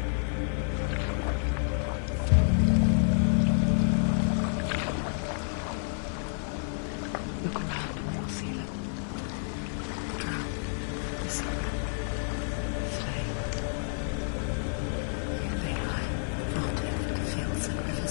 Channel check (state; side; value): silent; right; digital silence